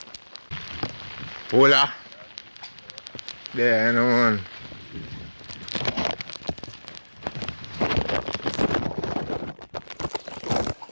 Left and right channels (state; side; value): inverted; both; correlation -1.00